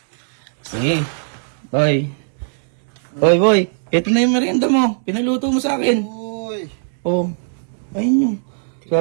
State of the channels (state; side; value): silent; left; digital silence